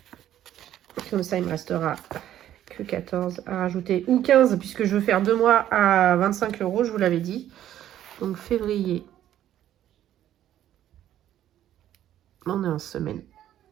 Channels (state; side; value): quieter; left; 11.8 dB